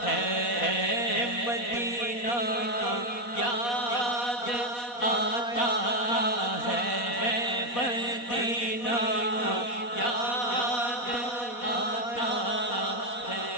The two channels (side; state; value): right; late; 4.1 ms